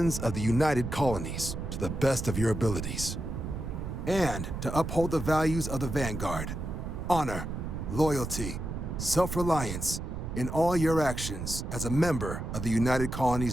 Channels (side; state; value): right; noise; rumble, 5 dB below the sound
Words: of the United Colonies to the best of your abilities? And to uphold the values of the Vanguard, honor, loyalty, self-reliance in all your actions as a member of the United